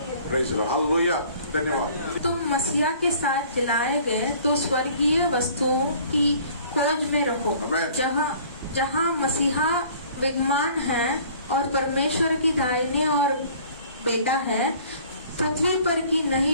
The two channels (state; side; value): inverted; both; correlation -0.52